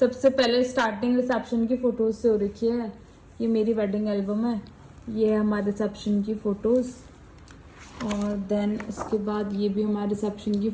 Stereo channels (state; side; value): identical; both; correlation 1.00